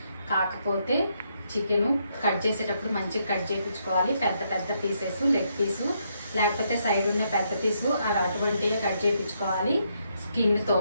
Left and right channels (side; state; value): both; inverted; correlation -0.76